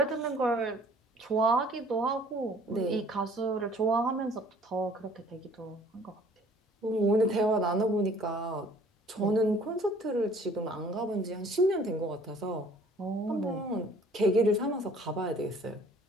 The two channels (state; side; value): normal; both; correlation 0.55